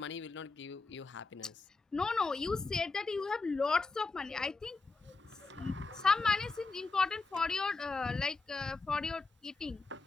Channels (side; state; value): right; quieter; 3.9 dB